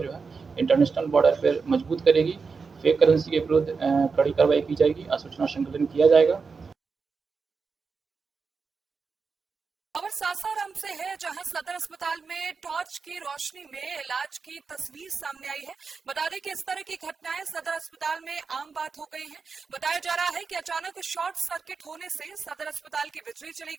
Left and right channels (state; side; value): quieter; left; 5.0 dB